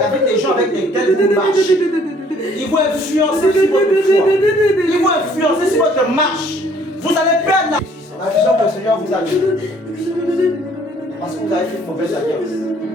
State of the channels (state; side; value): normal; both; correlation 0.60